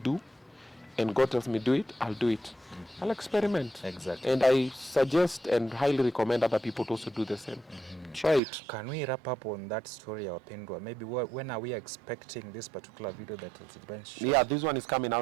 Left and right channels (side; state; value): left; drops out; at 8.4 s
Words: do and God tells me do it, I'll do it. I'll experiment. Exactly. And I suggest and highly recommend other people to also do the same. Try it. Can we wrap up on that story, Wapendwa? Maybe when are we expecting this particular video that is going to show? Yeah, this one is coming